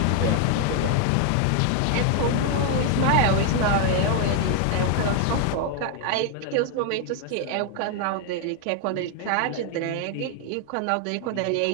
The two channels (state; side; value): different; both; correlation 0.00